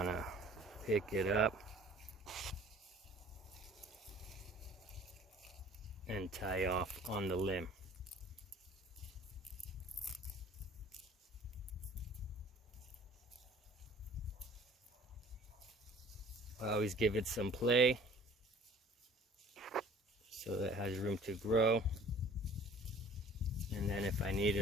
pick it up and tie off on the limb. I always give it some play so that it has room to grow. And then if I need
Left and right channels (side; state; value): both; normal; correlation 0.49